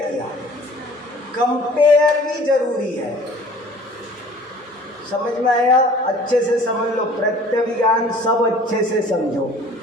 किया। कंपेयर भी जरूरी है, समझ में आया? अच्छे से समझ लो, प्रत्यभिज्ञान सब अच्छे से समझो।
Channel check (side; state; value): both; normal; correlation 0.49